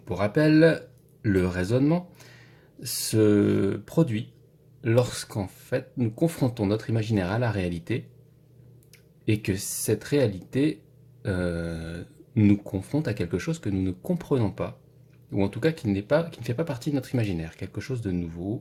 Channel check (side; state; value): both; identical; correlation 1.00